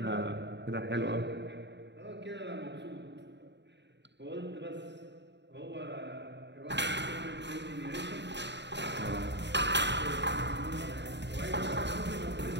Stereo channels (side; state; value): left; late; 0.51 ms